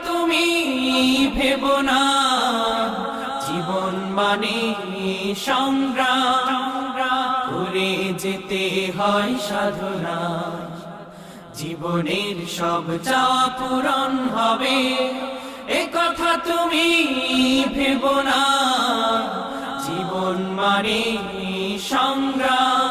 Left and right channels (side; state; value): both; identical; correlation 1.00